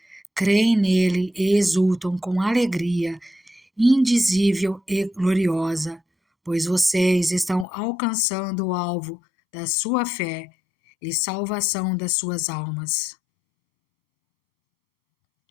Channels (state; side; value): drops out; right; at 7.7 s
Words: creem nele e exultam com alegria indizível e gloriosa, pois vocês estão alcançando o alvo da sua fé e salvação das suas almas.